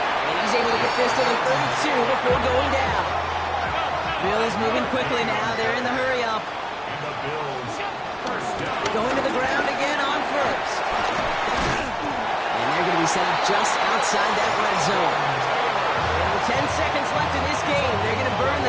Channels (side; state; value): both; identical; correlation 1.00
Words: And he's able to get this to the 32 before going down. Bills moving quickly now. They're in the hurry up. Going to the ground again on 1st. And they're going to be be set up just outside that red zone. And with 10 seconds left in this game, they're going to burn